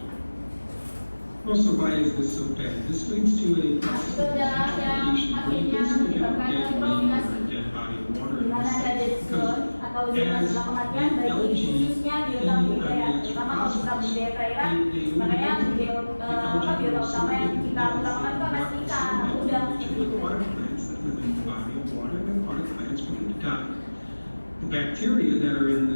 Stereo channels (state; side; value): inverted; both; correlation -1.00